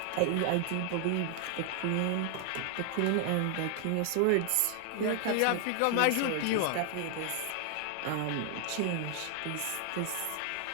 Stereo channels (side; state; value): both; different; correlation 0.00